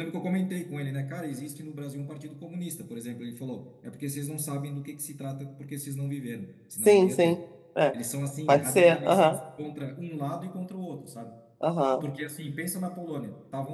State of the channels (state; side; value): identical; both; correlation 1.00